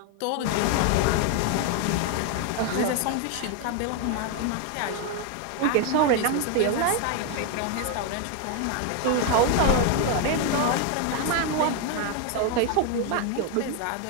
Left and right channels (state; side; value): different; both; correlation 0.01